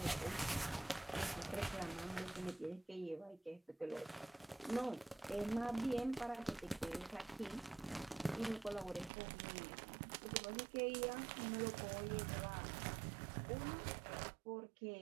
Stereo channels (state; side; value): drops out; left; at 9.1 s